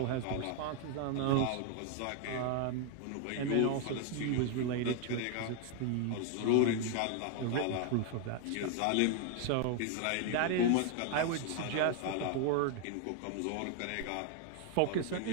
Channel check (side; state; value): both; different; correlation 0.00